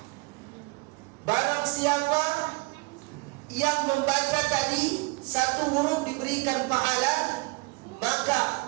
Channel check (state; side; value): quieter; left; 28.7 dB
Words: barang siapa yang membaca tadi satu huruf diberikan pahala,